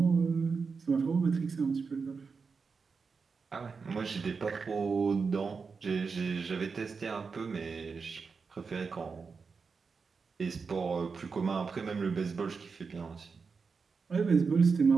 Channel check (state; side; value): quieter; left; 5.1 dB